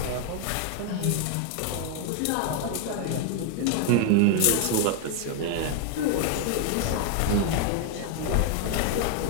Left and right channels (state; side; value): different; both; correlation 0.01